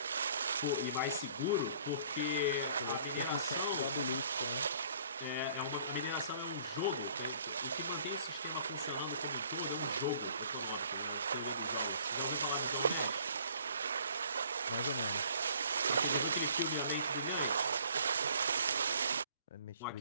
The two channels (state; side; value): inverted; both; correlation -0.57